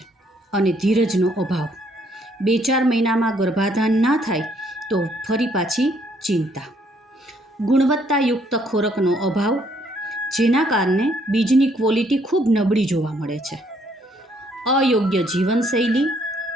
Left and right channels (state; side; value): normal; both; correlation 0.68